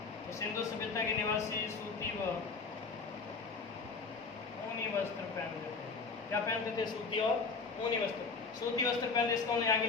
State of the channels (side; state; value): right; quieter; 4.6 dB